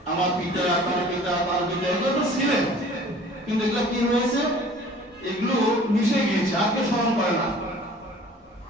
আমার পিতা, তার পিতা, তার পিতা, এগুলো তো ছিলেন, কিন্তু এগুলো কি হয়েছে? এগুলো মিশে গিয়েছে, আর কেউ স্মরণ করে না।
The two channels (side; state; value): both; normal; correlation 0.49